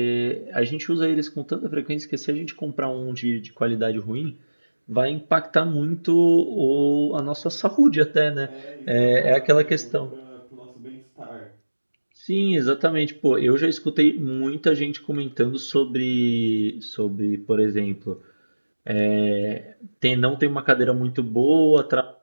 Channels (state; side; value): inverted; both; correlation -1.00